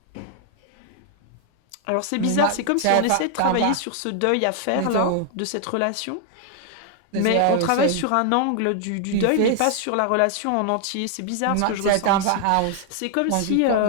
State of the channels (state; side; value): different; both; correlation 0.00